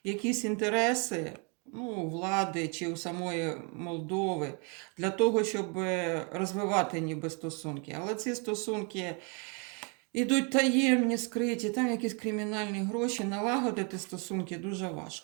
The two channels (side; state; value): left; quieter; 35.3 dB